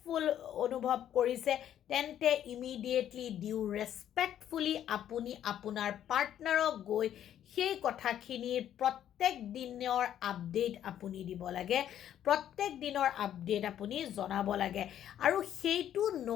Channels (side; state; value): right; quieter; 10.7 dB